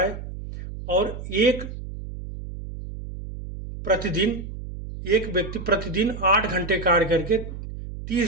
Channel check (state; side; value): noise; right; hum, 10 dB below the sound